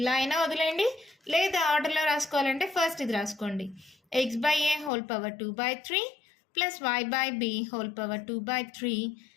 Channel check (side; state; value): right; drops out; at 4.9 s